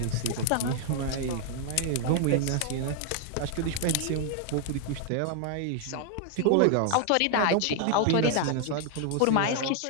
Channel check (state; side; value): different; both; correlation 0.00